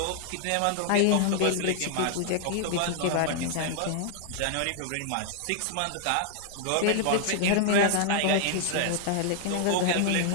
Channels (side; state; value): both; different; correlation 0.00